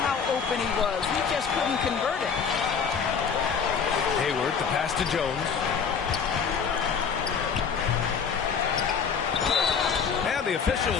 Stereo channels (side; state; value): right; quieter; 6.4 dB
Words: how open he was. He just couldn't convert it. Hayward, the pass to Jones. And the